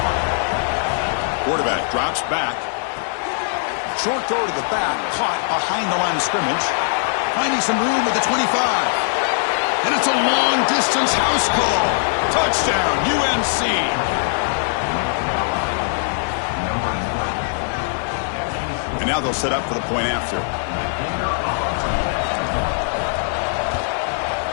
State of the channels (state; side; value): silent; right; 65 dB below the other